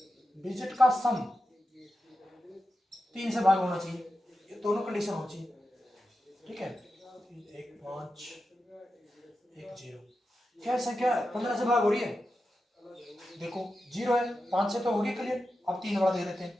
डिजिट का सम 3 से भाग होना चाहिए, ये दोनों कंडीशन होनी चाहिए, ठीक है। 1 5 1 0, क्या संख्या 15 से भाग हो रही है, देखो 0 है, 5 से तो होगी क्लियर। अब 3 वाला दे देते हैं,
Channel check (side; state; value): both; normal; correlation 0.90